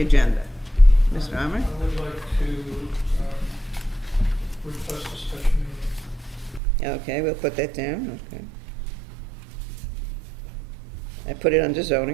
agenda? Mr. Armour? I would like to request a special meeting. Okay, we'll put that down, okay. I put it under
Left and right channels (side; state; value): left; drops out; at 6.6 s